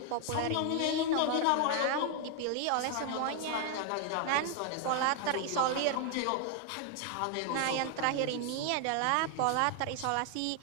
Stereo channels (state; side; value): different; both; correlation 0.00